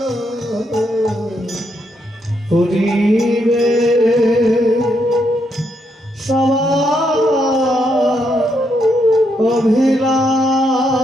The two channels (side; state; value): both; normal; correlation 0.78